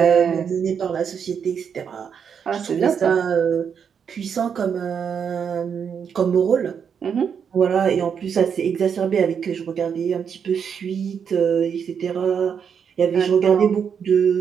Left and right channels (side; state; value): left; quieter; 7.2 dB